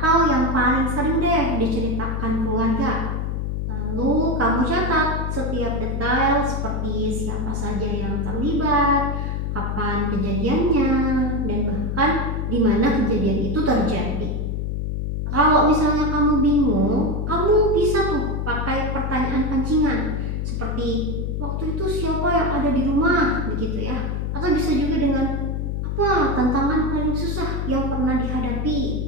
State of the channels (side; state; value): left; noise; hum, 2 dB below the sound